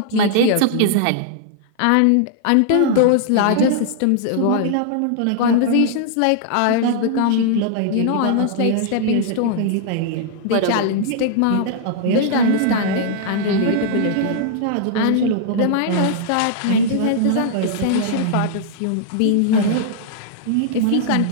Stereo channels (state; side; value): different; both; correlation -0.01